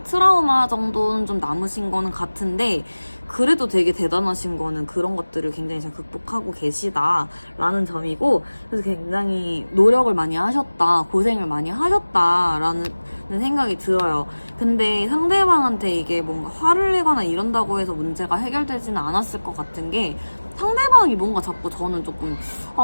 트라우마 정도는 좀 남으신 거는 같은데, 그래도 되게 대단하신 거는 그런 것들을 굉장히 잘 극복하고 계시다라는 점이고, 그래서 굉장히 노력을 많이 하셨다, 고생을 많이 하셨다라는 생각이 들어요. 근데 상대방한테 이게 뭔가 화를 내거나 이런다고 해서 문제가 해결되지는 않았을 것 같은 게, 상대방이 뭔가 자꾸 저는 조금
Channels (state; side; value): inverted; both; correlation -1.00